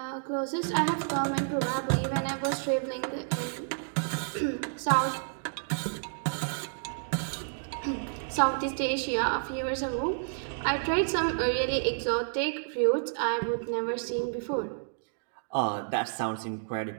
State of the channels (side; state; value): left; silent; digital silence